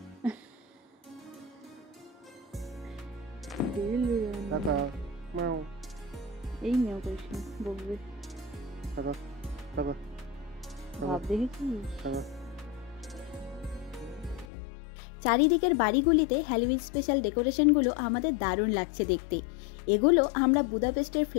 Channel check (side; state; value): right; drops out; at 14.5 s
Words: এই মেও করিস না, বকবে। ভাব দেখেছিস? চারিদিকের বাড়িগুলিতে হ্যালোউইন স্পেশাল ডেকোরেশনগুলো আমাদের দারুণ লাগছে দেখতে। এগুলো আমরা বুদাপেস্টের